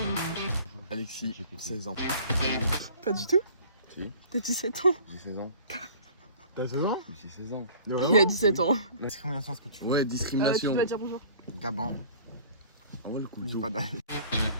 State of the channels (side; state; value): both; inverted; correlation -0.48